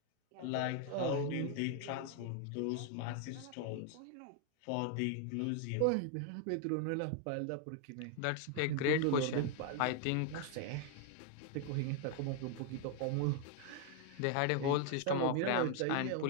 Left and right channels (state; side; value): different; both; correlation 0.00